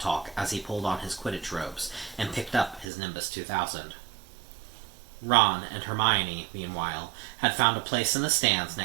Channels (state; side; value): drops out; left; at 2.9 s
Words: talk as he pulled on his Quidditch robes and picked up his Nimbus 2000. Ron and Hermione, meanwhile, had found a place in the stands